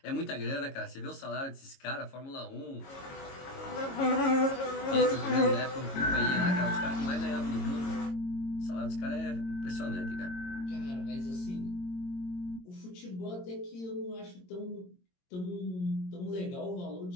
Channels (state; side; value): late; right; 22 ms